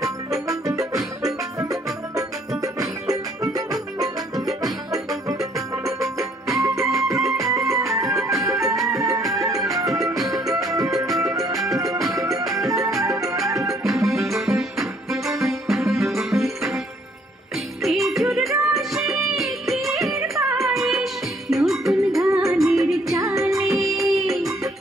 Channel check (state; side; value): normal; both; correlation 0.64